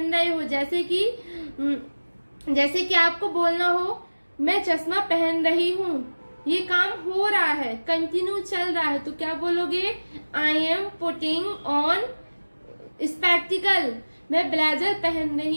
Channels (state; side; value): inverted; both; correlation -1.00